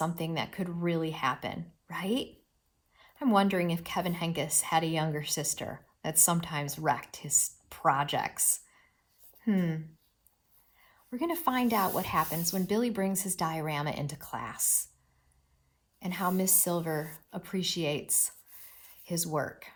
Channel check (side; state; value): both; identical; correlation 1.00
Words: that could really happen, right? I'm wondering if Kevin Henkes had a younger sister that sometimes wrecked his projects. We're going to find out what happens when Billy brings his diorama into class and how Miss Silver appreciates his work.